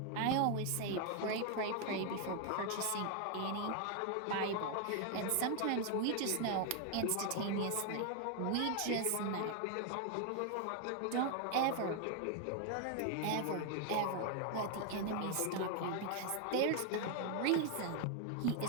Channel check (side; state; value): both; different; correlation 0.00